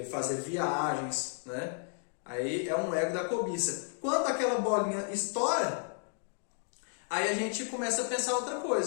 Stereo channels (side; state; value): right; silent; 56 dB below the other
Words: fazer viagens, né? Aí é um ego da cobiça. Quando aquela bolinha estoura, aí a gente começa a pensar outra